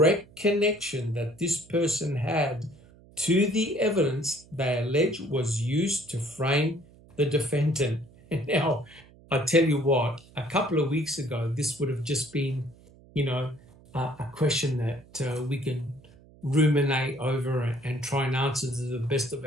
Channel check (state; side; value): noise; right; hum, 25 dB below the sound